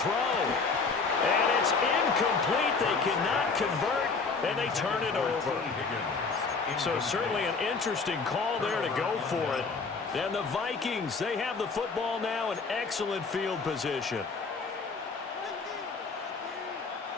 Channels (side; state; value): right; quieter; 4.5 dB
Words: And it's incomplete. They cannot convert, and they turn it over. So certainly an interesting call there to go for it. And the Vikings, they have the football now in excellent field position.